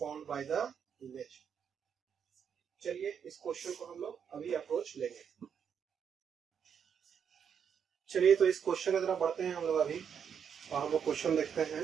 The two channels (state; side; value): quieter; left; 7.5 dB